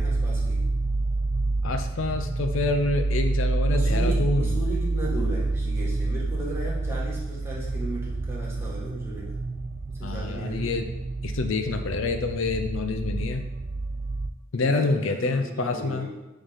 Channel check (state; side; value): normal; both; correlation 0.69